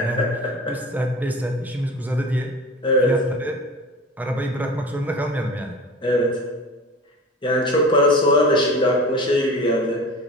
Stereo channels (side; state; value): both; normal; correlation 0.35